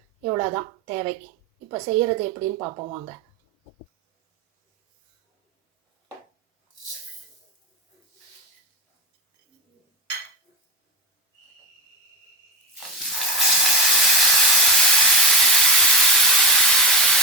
இவ்வளோதான் தேவை. இப்போ செய்கிறது எப்படின்னு பார்ப்போம் வாங்க.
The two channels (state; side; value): normal; both; correlation 0.17